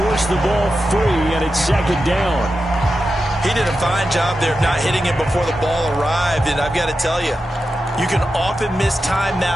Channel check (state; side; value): normal; both; correlation 0.90